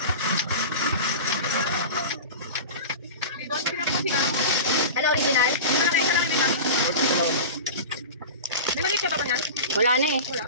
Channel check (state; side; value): inverted; both; correlation -0.30